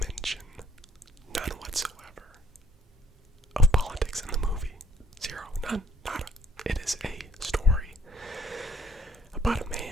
none whatsoever, of politics in the movie. Zero, none, nada. It is a story about a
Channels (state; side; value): normal; both; correlation 0.66